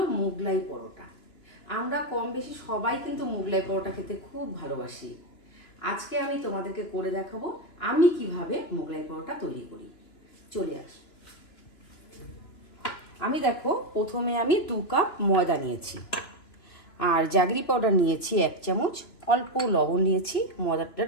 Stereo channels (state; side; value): late; right; 2.9 ms